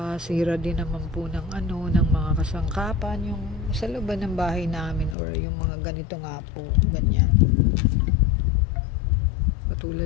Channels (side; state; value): right; drops out; at 5.2 s